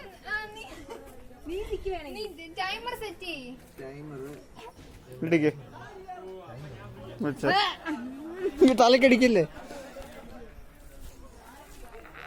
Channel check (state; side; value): identical; both; correlation 1.00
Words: ടൈമർ സെറ്റ് ചെയ്യ്. തലക്കടിക്കില്ലേ?